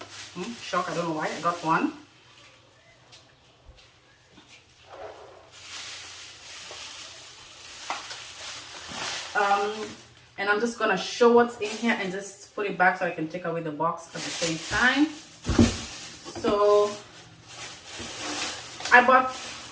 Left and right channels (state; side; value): identical; both; correlation 1.00